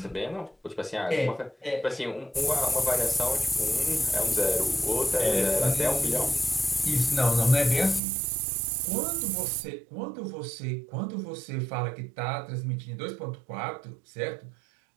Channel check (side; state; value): left; drops out; at 8.0 s